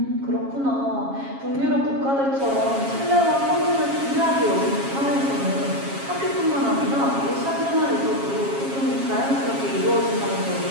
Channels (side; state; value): left; late; 7.3 ms